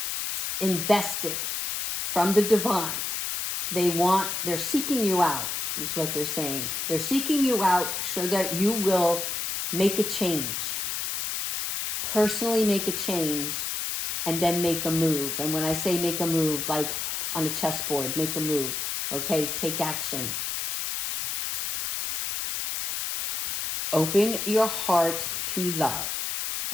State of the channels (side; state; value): left; noise; hiss, 2 dB below the sound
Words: invested from the divine, they're seeking you out, is what they're saying. They're seeking you out so that you will make a change. Personally make a change and then make a move. And when I say make a move, like on a chessboard, make a move, okay? Take action. Open your heart to love,